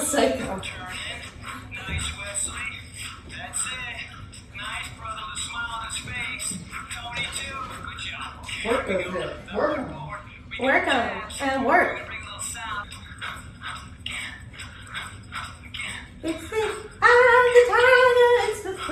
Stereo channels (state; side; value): identical; both; correlation 1.00